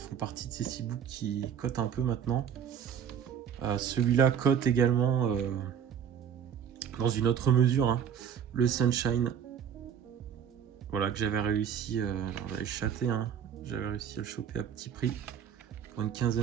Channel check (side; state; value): left; quieter; 8.4 dB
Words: partie de ces steelbooks qui cotent un peu maintenant. Celui-là cote également dans une autre mesure, hein, le Sunshine. Voilà, que j'avais réussi, alors j'avais chaté, hein, j'avais réussi à le choper à petit prix pour une